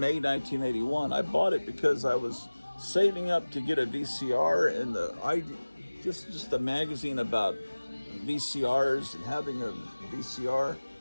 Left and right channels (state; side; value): inverted; both; correlation -1.00